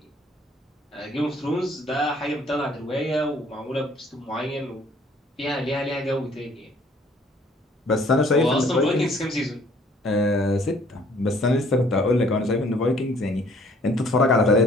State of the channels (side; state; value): both; normal; correlation 0.59